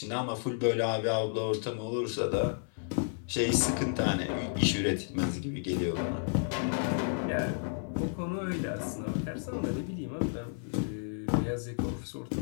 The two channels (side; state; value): right; silent; digital silence